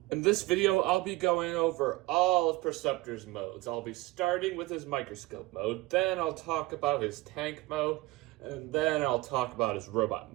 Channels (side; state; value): left; quieter; 20.4 dB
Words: In this video, I'll be going over all of Preceptor's modes. I'll be starting with his microscope mode, then I'll talk about his tank mode, and then I'll talk about his robot